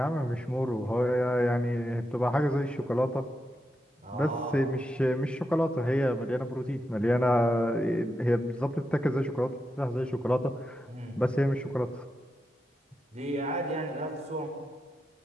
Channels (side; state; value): both; normal; correlation 0.86